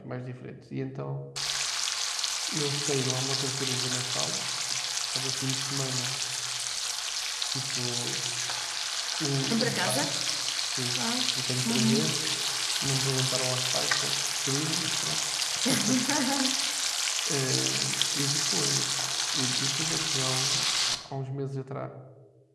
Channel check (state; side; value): identical; both; correlation 1.00